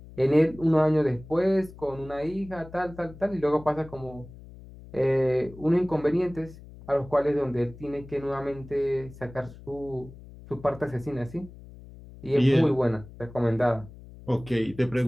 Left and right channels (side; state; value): left; noise; hum, 18 dB below the sound